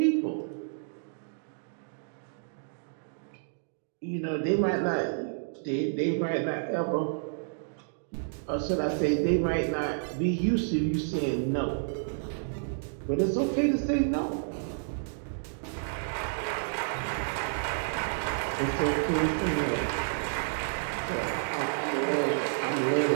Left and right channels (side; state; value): left; silent; digital silence